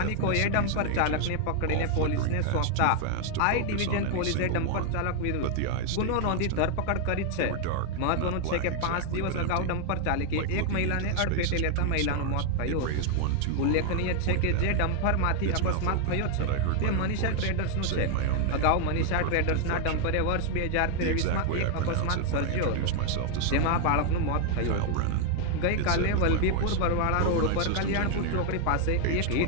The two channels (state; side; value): different; both; correlation 0.00